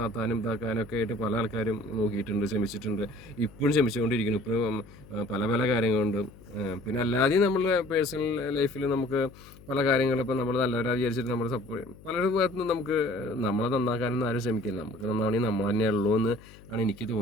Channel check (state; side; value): noise; left; hum, 21 dB below the sound